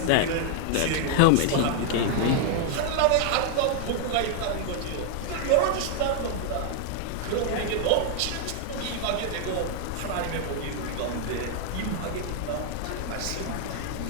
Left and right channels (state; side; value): different; both; correlation 0.00